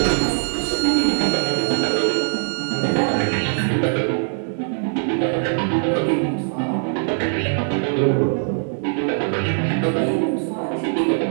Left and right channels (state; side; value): silent; left; 63 dB below the other